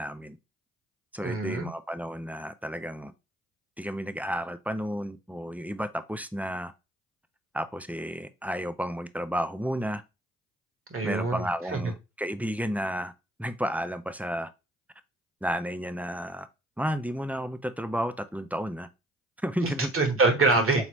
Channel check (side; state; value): both; normal; correlation 0.59